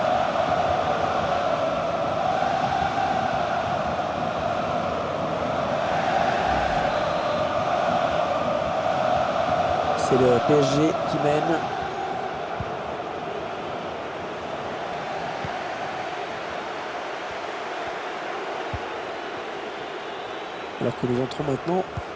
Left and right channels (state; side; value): identical; both; correlation 1.00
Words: C'est le PSG qui mène. Alors que nous entrons maintenant